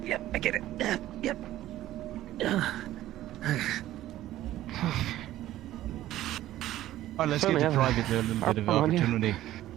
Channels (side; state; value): left; quieter; 14.2 dB